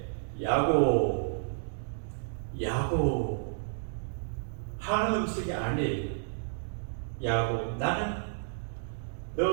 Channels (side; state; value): left; silent; digital silence